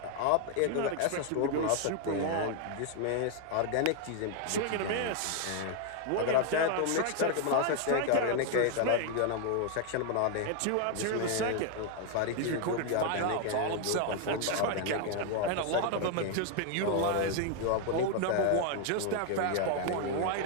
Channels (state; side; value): different; both; correlation 0.01